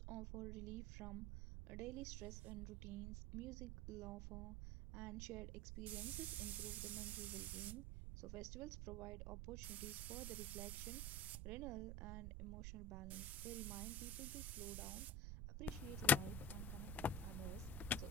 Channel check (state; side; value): noise; right; rumble, 3 dB below the sound